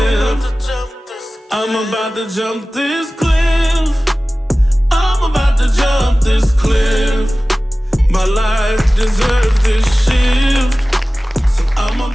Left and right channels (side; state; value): both; normal; correlation 0.97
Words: I'm about to jump this cliff. I'm about to jump this cliff. My life deserves this shift. So I'm